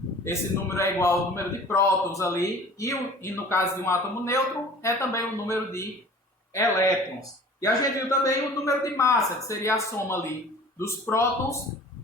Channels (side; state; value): both; normal; correlation 0.45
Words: esse número é igual ao número de prótons ali, e no caso de um átomo neutro é também o número de elétrons. E a gente viu também o número de massa, que seria a soma ali dos prótons